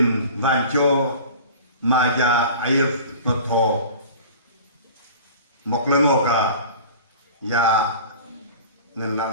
banco maja air noto moklengoka ya ngan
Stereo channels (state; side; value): inverted; both; correlation -0.40